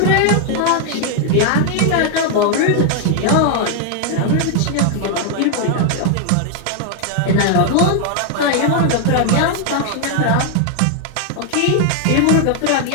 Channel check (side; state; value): both; different; correlation 0.00